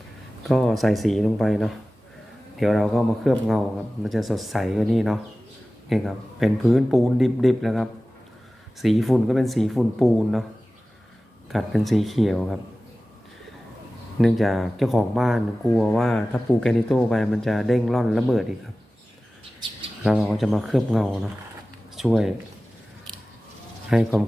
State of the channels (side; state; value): both; normal; correlation 0.96